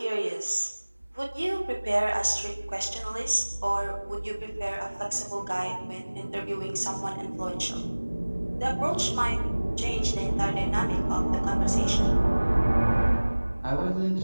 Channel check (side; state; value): both; inverted; correlation -1.00